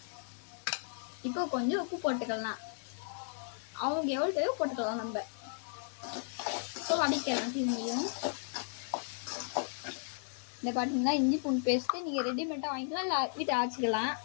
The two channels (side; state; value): right; silent; digital silence